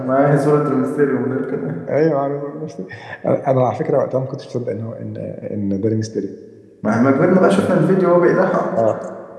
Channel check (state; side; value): identical; both; correlation 1.00